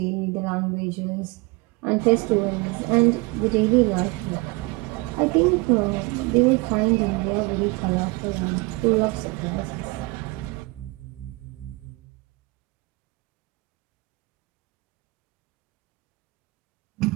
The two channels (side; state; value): left; quieter; 25.0 dB